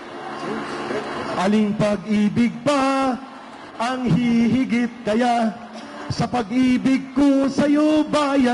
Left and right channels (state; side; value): identical; both; correlation 1.00